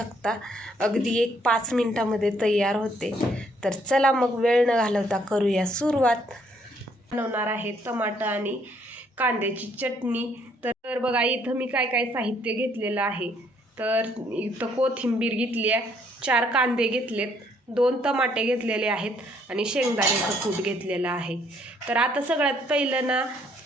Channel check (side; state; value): both; normal; correlation 0.67